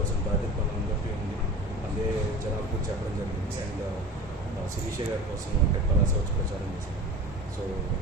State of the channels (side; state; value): both; normal; correlation 0.36